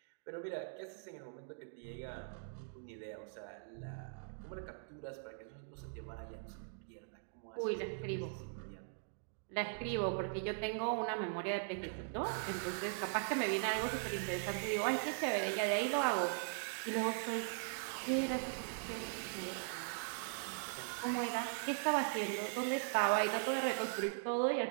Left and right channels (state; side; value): silent; left; digital silence